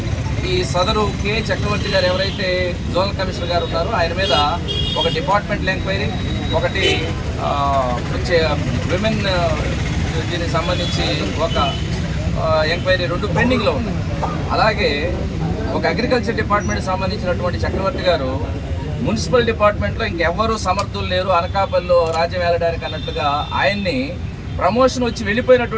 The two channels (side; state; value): both; identical; correlation 1.00